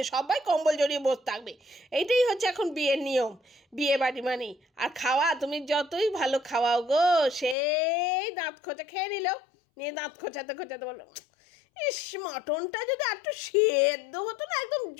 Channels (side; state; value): right; drops out; at 7.6 s